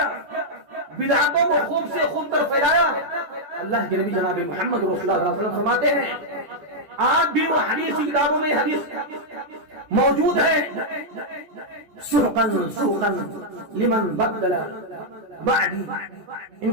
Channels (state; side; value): late; left; 14 ms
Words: بدعتوں کو خوب سے خوب تر پھیلایا۔ اللہ کے نبی جناب محمد رسول اللہ صلی اللہ علیہ وسلم فرماتے ہیں، آج بھی وہ حدیث کی کتابوں میں حدیث موجود ہے، سحقاً سحقاً لمن بدل بعدی، ان